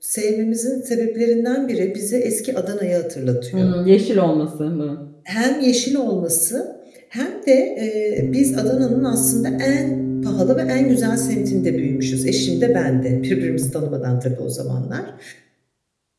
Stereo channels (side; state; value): both; identical; correlation 1.00